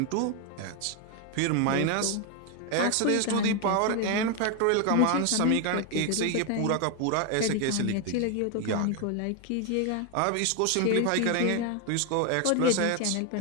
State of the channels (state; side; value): different; both; correlation 0.01